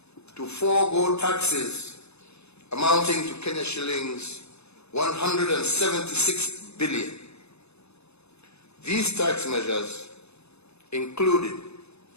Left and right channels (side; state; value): right; late; 0.80 ms